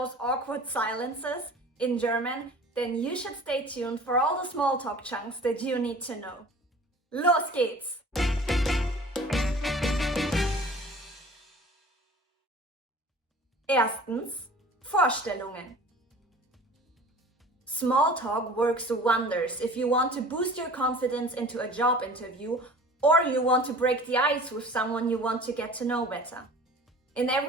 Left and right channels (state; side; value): normal; both; correlation 0.44